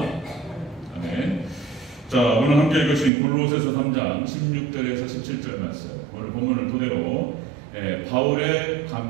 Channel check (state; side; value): drops out; left; at 3.1 s